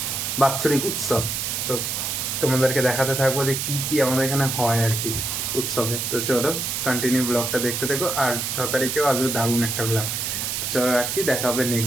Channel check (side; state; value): right; noise; hiss, 2 dB below the sound